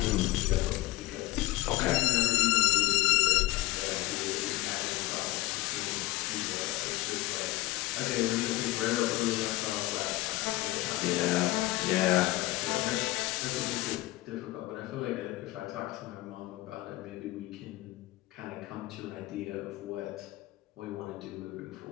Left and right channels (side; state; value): right; quieter; 19.0 dB